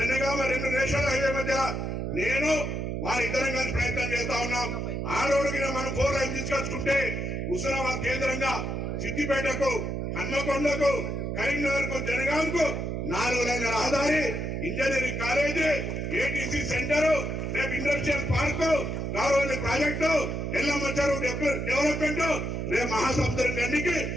2 నేషనల్ హైవే మధ్య నేను వారిద్దరం కలిసి ప్రయత్నం చేస్తా ఉన్నాం. ఆ రోడ్డుకి మనం 4 లైన్ తీసుకొచ్చుకుంటే హుస్నాబాద్ కేంద్రంగా సిద్దిపేటకు, హన్మకొండకు, కరీంనగర్ కు, జనగాంకు 4 లైన్ల రహదారి, ఇంజనీరింగ్ కాలేజీ, ఏటీసీ సెంటర్, రేపు industrial park, Gouravelli project, Yellamma చెరువు డెవలప్మెంట్, రేపు మహాసముద్రం గండికి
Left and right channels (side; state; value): right; noise; hum, 2 dB below the sound